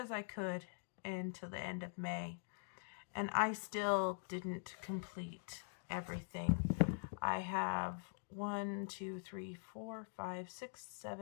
I could into the end of May, and I still didn't complete everything. I have 1, 2, 3, 4, 5, 6,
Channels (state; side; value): silent; right; digital silence